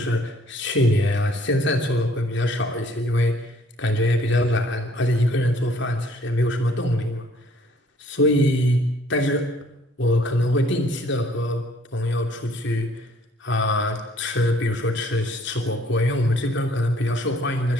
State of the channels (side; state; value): both; normal; correlation 0.60